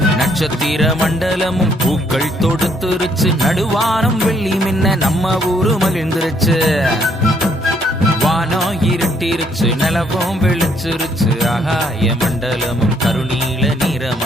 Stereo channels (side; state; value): both; normal; correlation 0.68